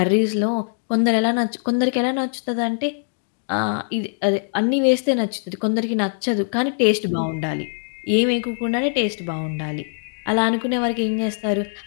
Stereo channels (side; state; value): right; silent; digital silence